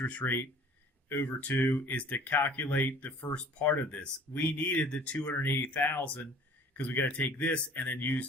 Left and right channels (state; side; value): normal; both; correlation 0.49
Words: rate over 2 is to calculate the first part of this. We needed the $280,000 because we got to take this and then